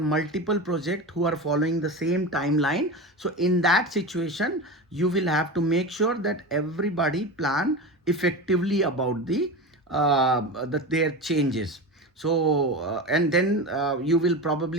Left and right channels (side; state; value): both; normal; correlation 0.25